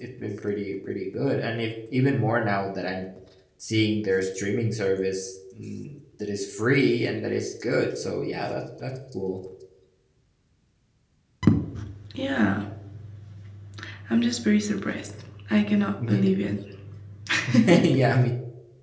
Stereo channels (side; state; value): both; identical; correlation 1.00